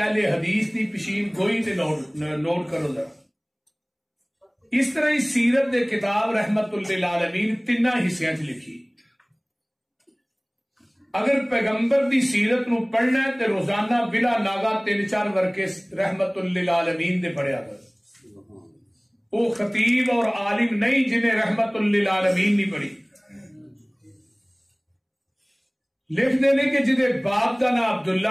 حدیث دی پشین گوئی تے نوٹ کرو ذرا۔ اس طرح ہی سیرت دے کتاب رحمت للعالمین 3 حصیاں چ لکھی۔ اگر پیغمبر دی سیرت نو پڑھنا ہے تے روزانہ بلا ناگا 3-4 ورقے رحمت للعالمین دے پڑھیا کر۔ وہ خطیب اور عالم نہیں جنہیں رحمت للعالمین نہیں پڑھی۔ لکھ دینے کہ جدے باپ دا نام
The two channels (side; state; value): both; identical; correlation 1.00